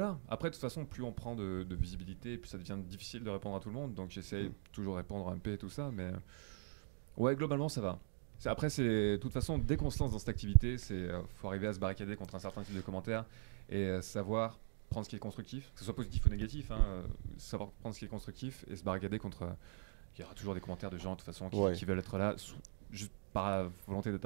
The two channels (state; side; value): silent; left; digital silence